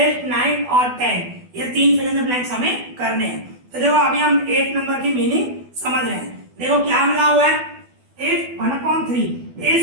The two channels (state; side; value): late; left; 12 ms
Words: 9 और 10 ये 3 फिल इन द ब्लैंक्स हमें करने हैं। तो देखो अभी हम 8 नंबर की मीनिंग समझ रहे हैं। देखो क्या मिला हुआ है, if 1/3